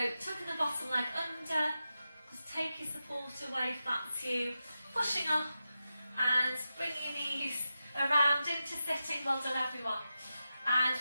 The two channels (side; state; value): both; inverted; correlation -0.91